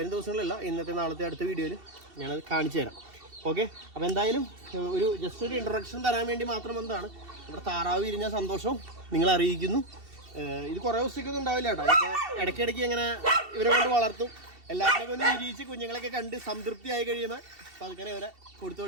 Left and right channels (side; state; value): left; late; 2.7 ms